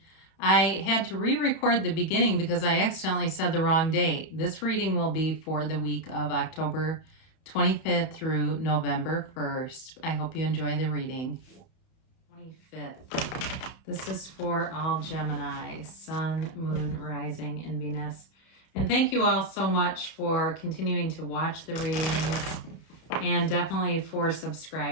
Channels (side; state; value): right; late; 31 ms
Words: I had to re-record the beginning because I accidentally said the wrong date. This reading will be for the week of October 25th through November 1st. I hope you enjoy the reading. 25th. This is for all Gemini, Sun, Moon, Rising, and Venus. And thank you all so much for continuing to watch the readings. And definitely for